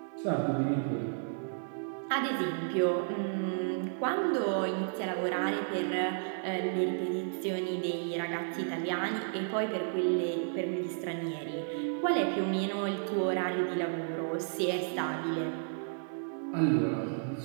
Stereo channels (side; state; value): left; silent; digital silence